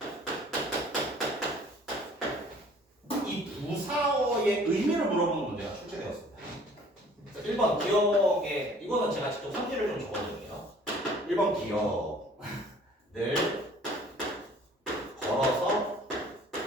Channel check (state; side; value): normal; both; correlation 0.53